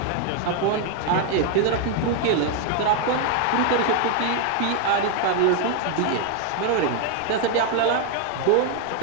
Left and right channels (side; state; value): both; different; correlation 0.00